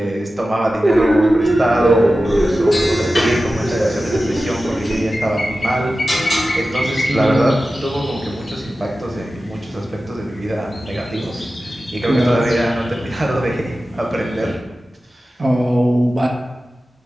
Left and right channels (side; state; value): both; normal; correlation 0.94